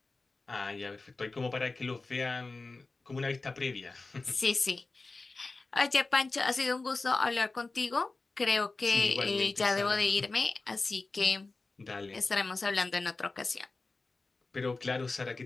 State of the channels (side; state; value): right; quieter; 3.6 dB